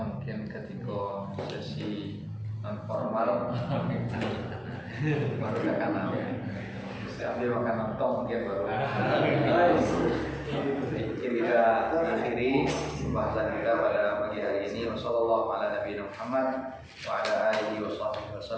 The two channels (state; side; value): identical; both; correlation 1.00